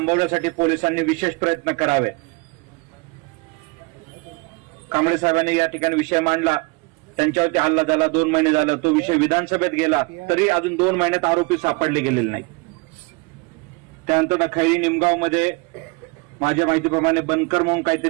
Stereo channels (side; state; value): left; quieter; 27.8 dB